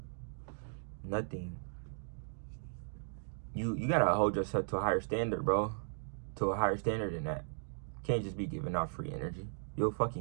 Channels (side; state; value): left; silent; digital silence